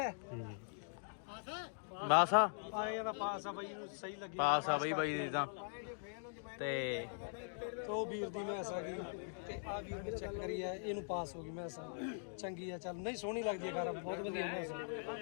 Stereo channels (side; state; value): right; silent; digital silence